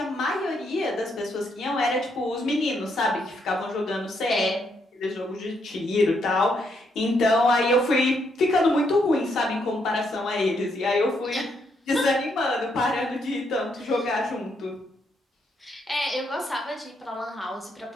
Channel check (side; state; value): both; normal; correlation 0.76